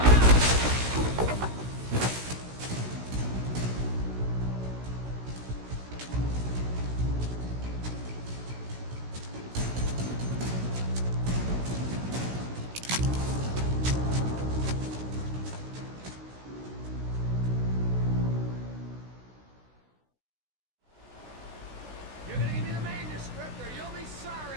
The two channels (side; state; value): left; late; 16 ms